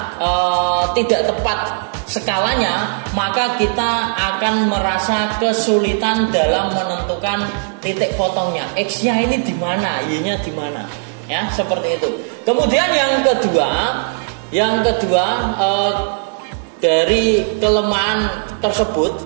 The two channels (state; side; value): silent; left; digital silence